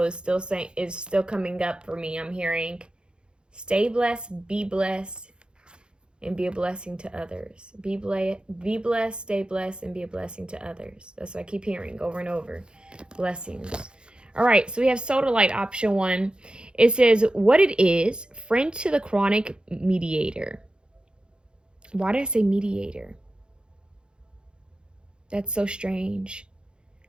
is still coming up for me. I'm hearing stay blessed, be blessed, and be a blessing to others. Be blessed, stay blessed, and be a blessing to others. That's what I keep hearing over and over. Blessings. All right, so we have Sodalite option 1. It says, what it is, friend to the chronic mediator. Why did I say mediator? That's so strange.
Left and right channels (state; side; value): late; left; 0.051 ms